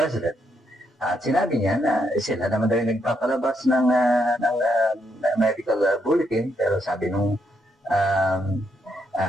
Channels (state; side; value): normal; both; correlation 0.77